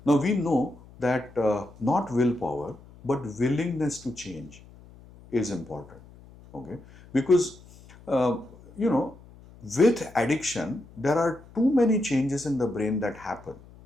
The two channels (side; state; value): left; noise; hum, 22 dB below the sound